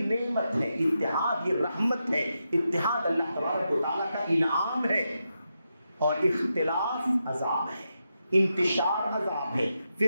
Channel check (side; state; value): both; inverted; correlation -0.86